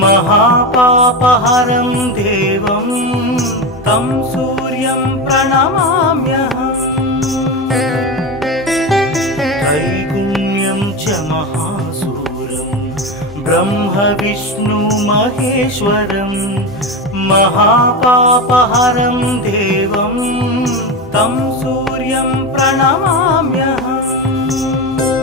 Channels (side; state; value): both; normal; correlation 0.20